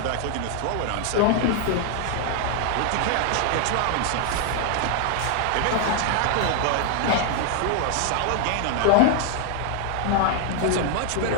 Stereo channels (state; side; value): different; both; correlation 0.00